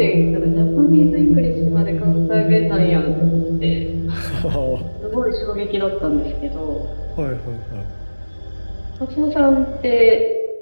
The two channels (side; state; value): both; inverted; correlation -1.00